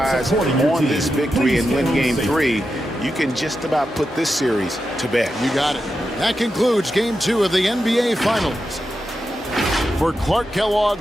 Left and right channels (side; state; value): both; normal; correlation 0.89